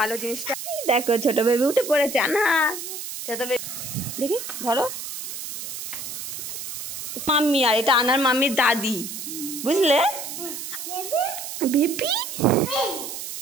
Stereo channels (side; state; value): right; noise; hiss, 8 dB below the sound